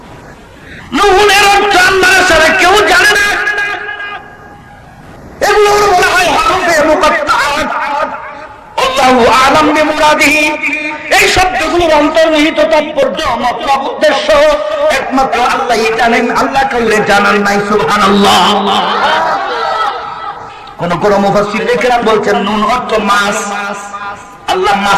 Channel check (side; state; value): both; identical; correlation 1.00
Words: নুনের অর্থ আল্লাহ ছাড়া কেউ জানে না। এগুলো বলা হয় হরফে মুকাত্তাআত। আল্লাহু আ'লাম বিমুরাদিহি। এই শব্দগুলোর অন্তর্নিহিত তাৎপর্য, মতলব, উদ্দেশ্য একমাত্র আল্লাহই জানেন। আল্লাহ কাউকে জানান নাই। সুবহানাল্লাহ। কোন কোন মুফাসসির কেরাম বলছেন নুন অর্থ মাছ। আল্লাহ